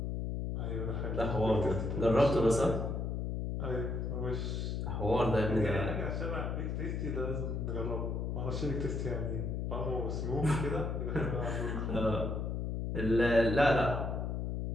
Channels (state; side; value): noise; left; hum, 2 dB below the sound